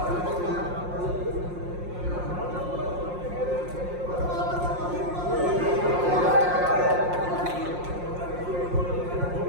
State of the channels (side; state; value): left; late; 5.6 ms